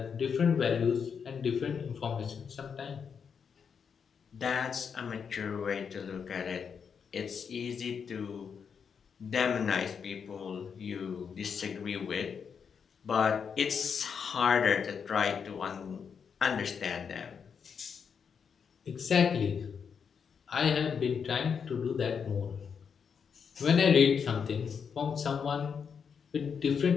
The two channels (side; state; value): right; quieter; 6.6 dB